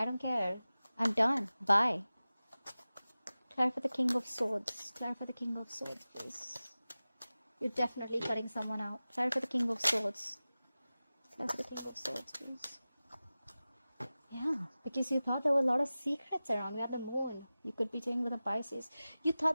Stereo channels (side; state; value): both; inverted; correlation -0.97